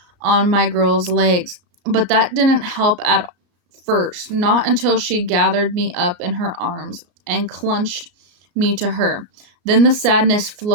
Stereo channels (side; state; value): left; late; 33 ms